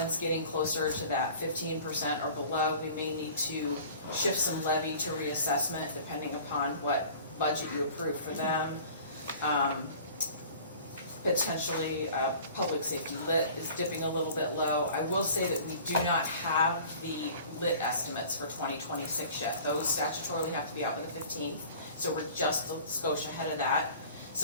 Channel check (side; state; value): both; inverted; correlation -0.46